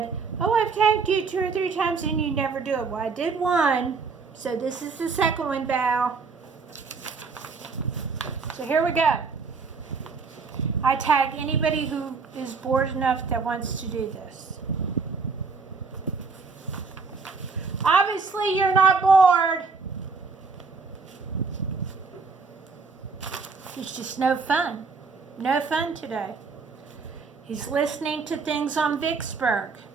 "Oh, I've tagged you 2 or 3 times and you never do it." Well, I did one, so this is the second one, Val. So here we go. I tag anybody who is bored enough that wants to do this. Obviously, you're not bored. It's just no fun. No fun today. He's listening to things on Vicksburg.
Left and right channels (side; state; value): left; quieter; 4.7 dB